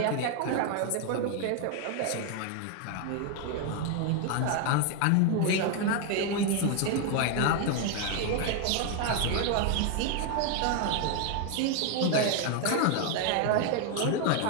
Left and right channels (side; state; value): both; different; correlation 0.01